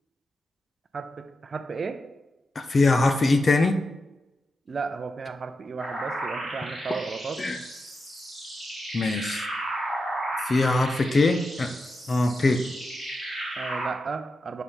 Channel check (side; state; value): both; normal; correlation 0.88